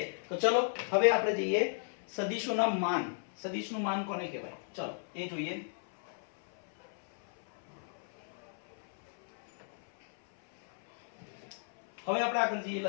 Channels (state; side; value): silent; right; 55 dB below the other